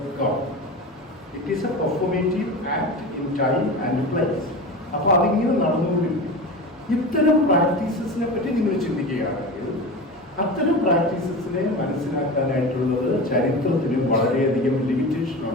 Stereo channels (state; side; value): normal; both; correlation 0.28